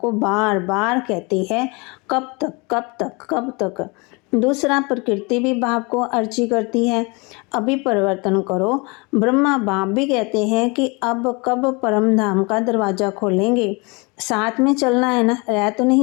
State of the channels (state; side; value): quieter; right; 28.7 dB